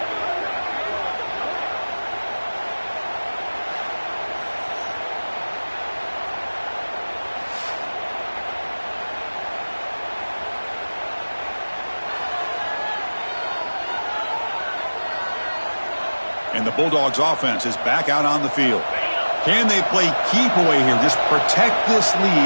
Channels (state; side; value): inverted; both; correlation -1.00